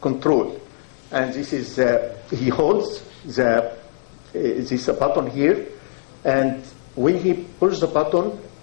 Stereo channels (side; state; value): right; silent; digital silence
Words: control. And this is, he holds this button here, and when he pushes the button,